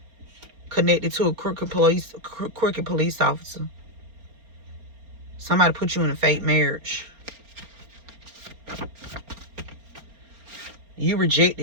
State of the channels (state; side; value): late; left; 4.3 ms